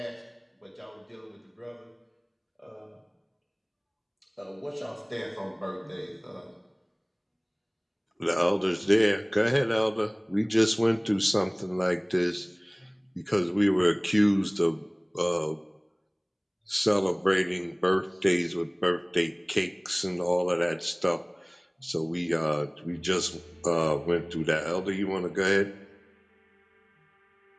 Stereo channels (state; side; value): identical; both; correlation 1.00